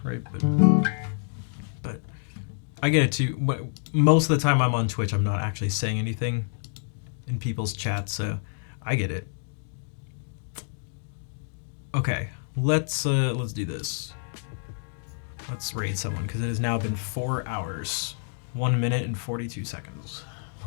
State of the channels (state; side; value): silent; right; digital silence